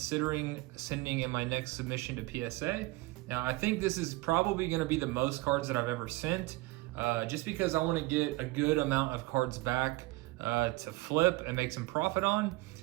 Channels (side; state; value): left; quieter; 21.3 dB